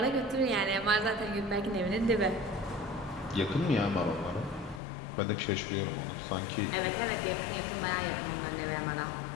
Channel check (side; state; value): right; drops out; at 4.8 s